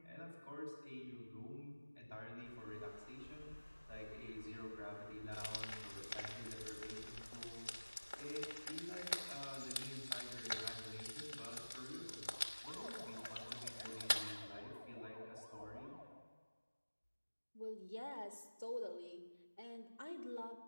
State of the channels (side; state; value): both; inverted; correlation -1.00